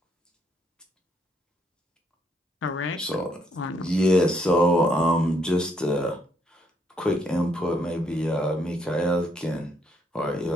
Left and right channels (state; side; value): normal; both; correlation 0.72